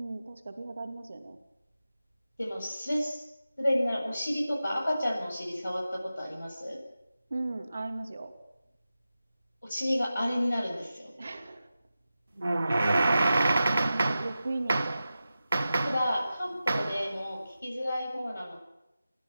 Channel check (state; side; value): inverted; both; correlation -0.93